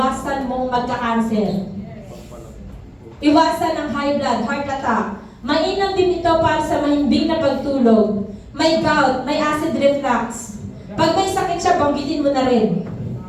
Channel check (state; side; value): identical; both; correlation 1.00